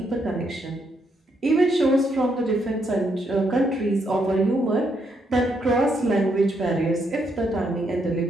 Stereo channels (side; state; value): both; normal; correlation 0.76